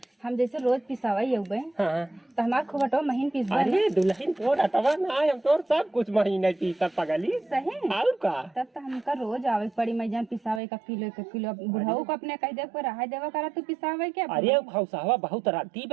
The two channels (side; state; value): left; drops out; at 10.6 s